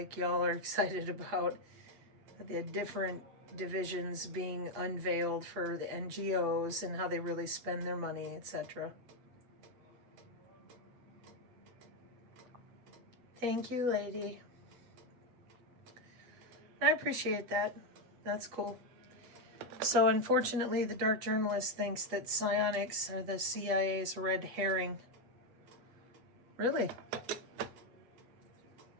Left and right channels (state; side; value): late; left; 8.0 ms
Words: y'all are excited about the different divisions being unveiled for the NGOs and how they really spend their money, etc. Thank you, lady. I appreciate that. That's cool. So unfortunately, the dark journalist thinks that psionics are the CIA's red herring. Really?